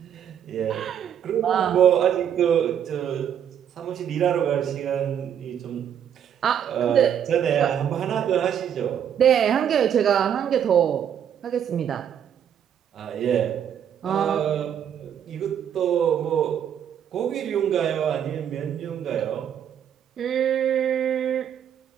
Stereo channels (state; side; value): quieter; left; 9.0 dB